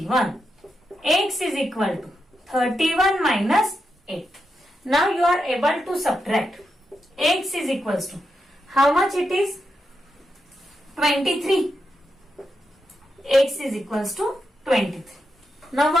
X is equal to 31 minus 8. Now you are able to subtract. X is equals to, how much it is? 23. X is equals to 23. Now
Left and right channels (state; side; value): normal; both; correlation 0.86